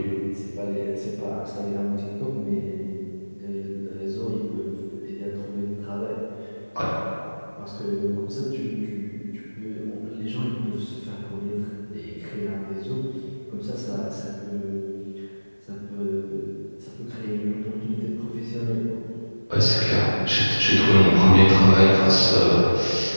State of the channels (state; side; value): inverted; both; correlation -1.00